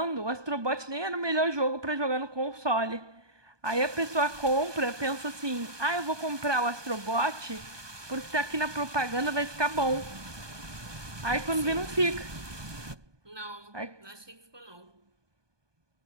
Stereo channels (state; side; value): late; left; 1.2 ms